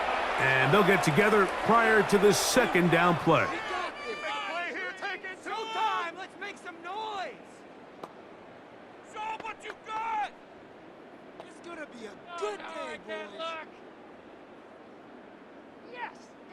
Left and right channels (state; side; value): identical; both; correlation 1.00